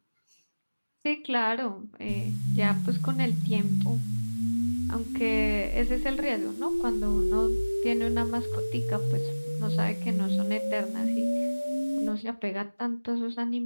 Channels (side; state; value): both; inverted; correlation -1.00